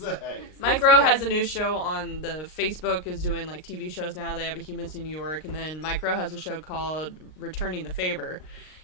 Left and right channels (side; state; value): right; late; 39 ms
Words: Mike Rowe has a new show on the Facebook, is doing like TV shows now. They have a Humans in New York, and then Mike Rowe has a show called Returning the Favor,